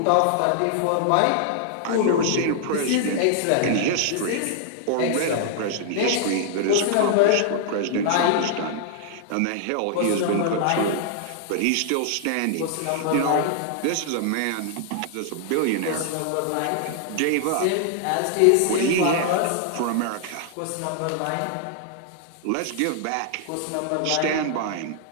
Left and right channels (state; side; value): different; both; correlation 0.00